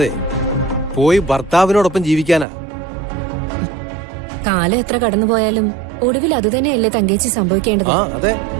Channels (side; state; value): left; drops out; at 2.5 s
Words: പോയി ഭർത്താവിനോടൊപ്പം ജീവിക്കാനാ. കാലം എത്ര കടന്നുപോയാലും ഒടുവിൽ അതുതന്നെയല്ലേ തങ്കേച്ചി സംഭവിക്കേണ്ടത്. അതെ.